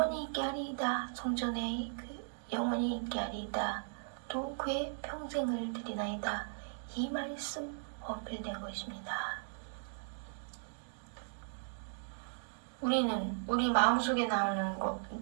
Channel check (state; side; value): silent; left; digital silence